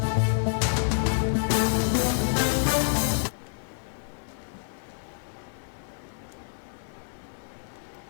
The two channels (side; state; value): right; silent; digital silence